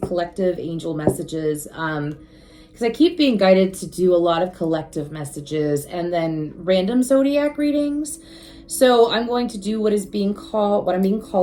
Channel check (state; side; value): identical; both; correlation 1.00